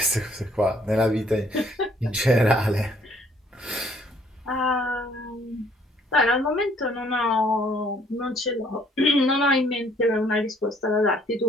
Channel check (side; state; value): both; normal; correlation 0.62